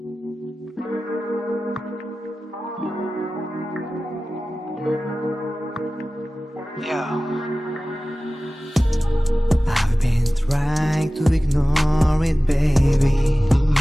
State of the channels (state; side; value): normal; both; correlation 0.96